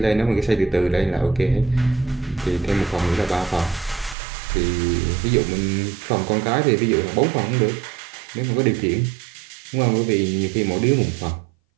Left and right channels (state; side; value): drops out; left; at 4.2 s